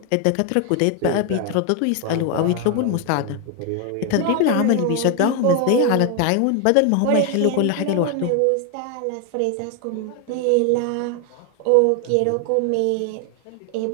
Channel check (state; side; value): different; both; correlation 0.01